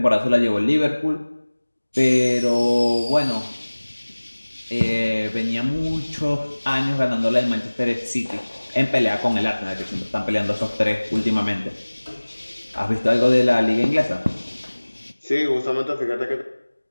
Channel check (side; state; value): both; inverted; correlation -1.00